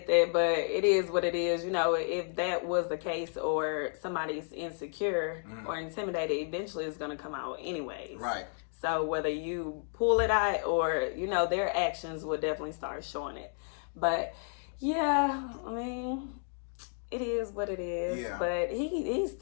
that, but it is what it is. You know, if that was the case, or somebody's insecure or intimidated, eventually it's going to come out anyways. Right. So whether you pull it out or, you know, their actions will definitely start showing it. But yeah, I mean, it is what it is. Yeah. But he's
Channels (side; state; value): right; silent; 56 dB below the other